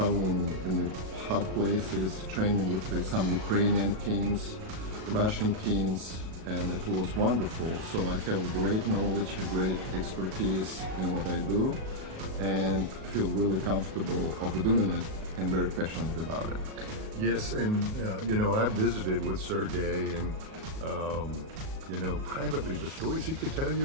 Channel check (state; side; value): late; left; 37 ms